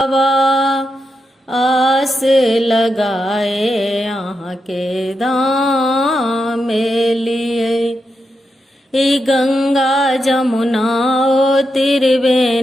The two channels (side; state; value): both; normal; correlation 0.85